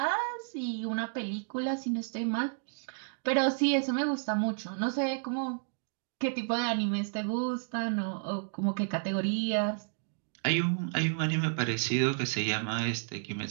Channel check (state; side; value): silent; left; digital silence